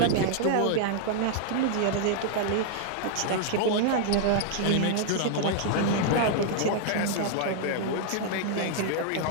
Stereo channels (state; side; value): different; both; correlation -0.01